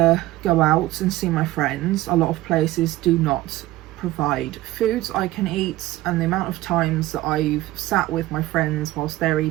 go out and see my friends. A lot of places do not provide foods I can eat, and the amount of times that I've sat with my friends whilst they're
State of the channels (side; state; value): left; quieter; 16.8 dB